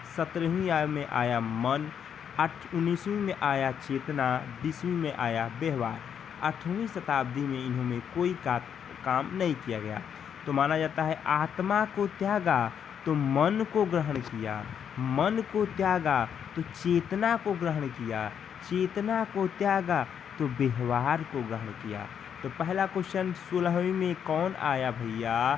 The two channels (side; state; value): right; quieter; 8.1 dB